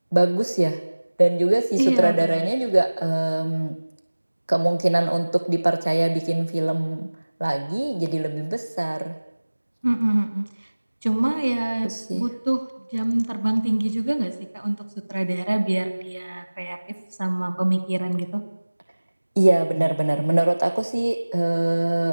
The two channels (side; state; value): both; inverted; correlation -1.00